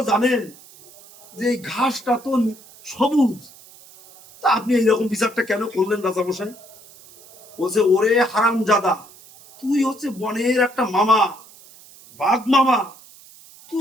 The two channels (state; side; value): noise; right; hiss, 23 dB below the sound